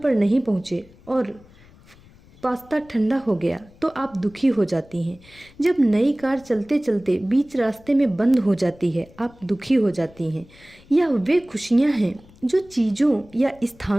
नहीं पहुँचे और पास्ता ठंडा हो गया तो आप दुखी हो जाती हैं। जब नई कार चलते चलते बीच रास्ते में बंद हो जाती है आप दुखी हो जाती हैं। यह वे खुशियाँ हैं जो चीज़ों या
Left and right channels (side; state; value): left; noise; rumble, 25 dB below the sound